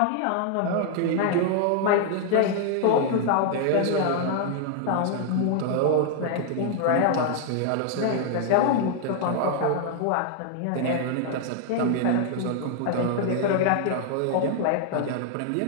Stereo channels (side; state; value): both; different; correlation 0.00